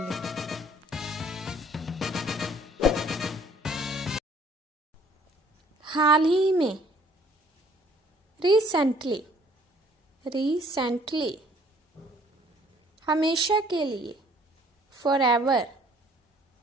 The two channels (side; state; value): both; normal; correlation 0.59